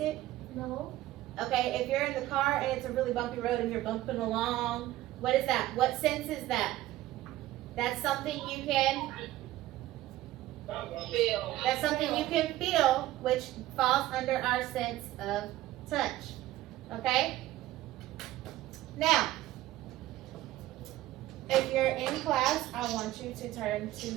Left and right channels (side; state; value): left; quieter; 15.5 dB